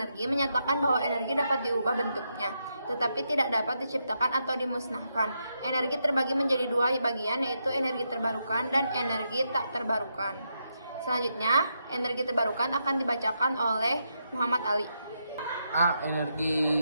menyatakan bahwa energi dapat diubah bentuknya, tetapi tidak dapat diciptakan atau dimusnahkan. Energi terbagi menjadi dua bagian, yaitu energi terbarukan dan energi tak terbarukan. Selanjutnya, energi terbarukan akan dibacakan oleh Muhammad Ali. A.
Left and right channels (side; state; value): both; inverted; correlation -0.82